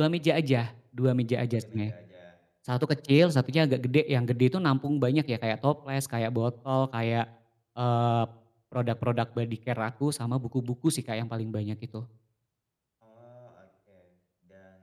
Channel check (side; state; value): both; identical; correlation 1.00